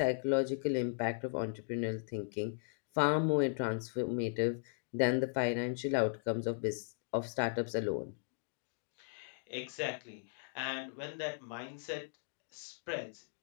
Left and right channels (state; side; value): silent; right; digital silence